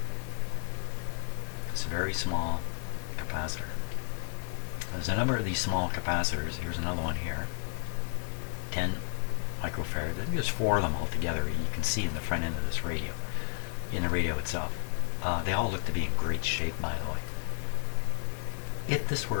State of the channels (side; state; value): right; silent; 57 dB below the other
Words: It's a very small capacitor. There's a number of these small capacitors. Here's another one here. 10 microfarad. There's 4 of them altogether. You can see in the front end of this radio, in the radio itself. They all look to be in great shape, by the way. If this